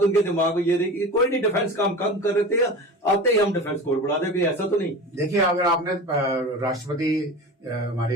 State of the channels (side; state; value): both; normal; correlation 0.32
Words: उनके दिमाग में ये रही कि कोई नहीं, डिफेंस काम कम कर रहे थे, आते ही हम डिफेंस कोर बढ़ा देंगे, ऐसा तो नहीं। देखिए, अगर आपने राष्ट्रपति